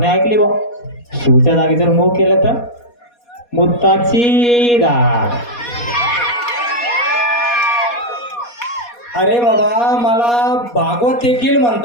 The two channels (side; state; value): right; late; 4.2 ms